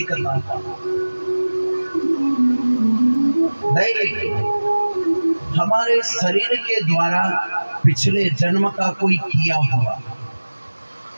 ताप। दैहिक हमारे शरीर के द्वारा पिछले जन्म का कोई किया हुआ,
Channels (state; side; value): inverted; both; correlation -1.00